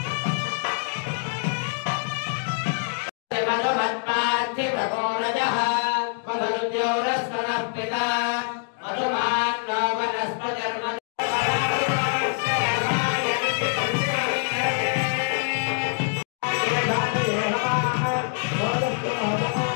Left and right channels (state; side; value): silent; right; 62 dB below the other